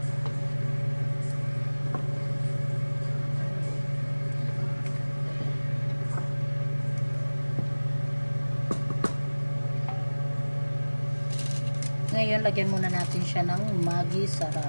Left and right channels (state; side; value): inverted; both; correlation -1.00